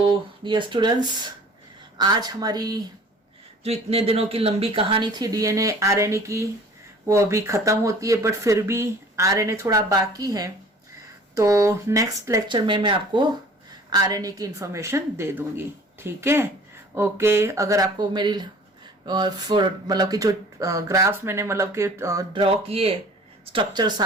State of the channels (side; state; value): both; normal; correlation 0.48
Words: डियर स्टूडेंट्स, आज हमारी जो इतने दिनों की लंबी कहानी थी डीएनए आरएनए की, वो अभी खत्म होती है, बट फिर भी आरएनए थोड़ा बाकी है। तो नेक्स्ट लेक्चर में मैं आपको आरएनए की इंफॉर्मेशन दे दूंगी। ठीक है, ओके। अगर आपको मेरी मतलब कि जो ग्राफ्स मैंने मतलब कि ड्रॉ किए स्ट्रक्चर